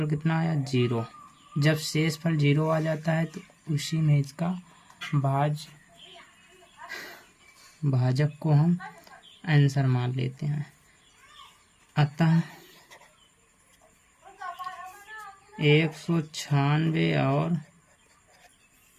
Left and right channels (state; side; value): identical; both; correlation 1.00